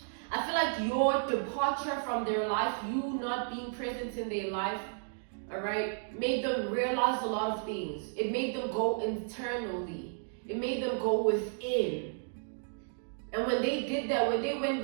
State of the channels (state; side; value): silent; left; digital silence